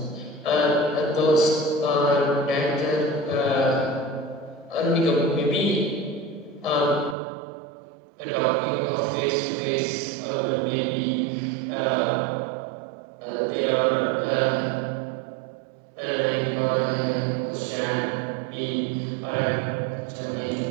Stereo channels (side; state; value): left; drops out; at 7.2 s